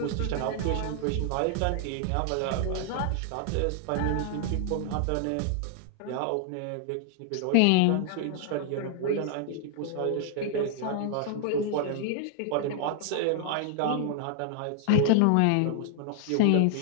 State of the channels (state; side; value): different; both; correlation 0.00